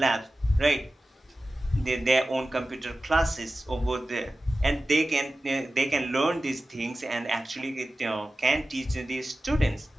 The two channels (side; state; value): both; normal; correlation 0.95